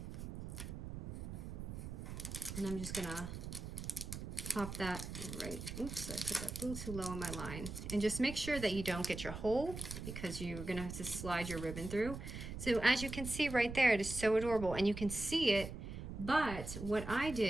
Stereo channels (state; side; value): noise; right; rumble, 8 dB below the sound